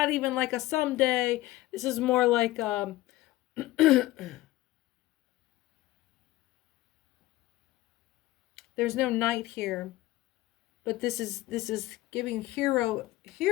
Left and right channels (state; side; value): quieter; right; 17.0 dB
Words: even like a someday. This is more like there's no knight here. But this is giving hero